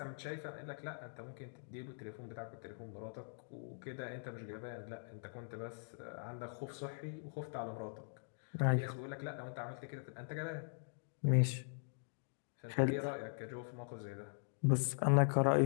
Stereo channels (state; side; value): silent; right; digital silence